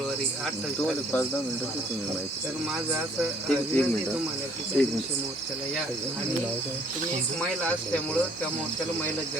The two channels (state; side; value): normal; both; correlation 0.60